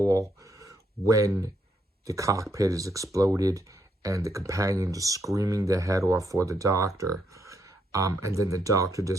when the cockpit is exploded and the companions are screaming their head off for the Doctor. And then the Doctor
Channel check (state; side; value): normal; both; correlation 0.76